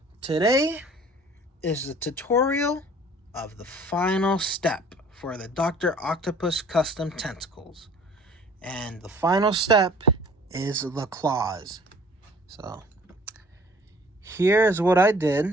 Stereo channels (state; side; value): normal; both; correlation 0.52